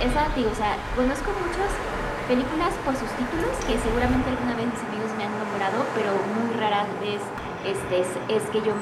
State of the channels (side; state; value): both; identical; correlation 1.00